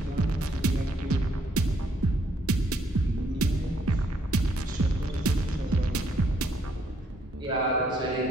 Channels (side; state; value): both; normal; correlation 0.70